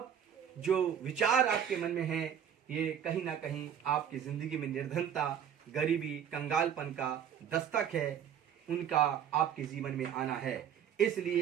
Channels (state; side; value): quieter; left; 8.9 dB